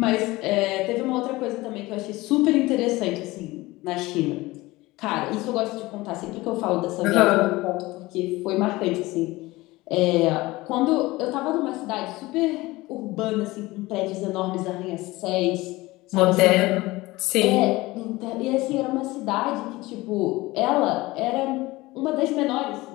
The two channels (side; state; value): right; quieter; 20.0 dB